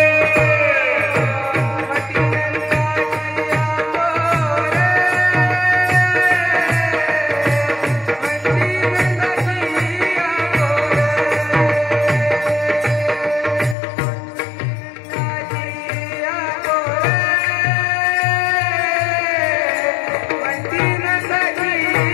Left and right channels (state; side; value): drops out; right; at 13.8 s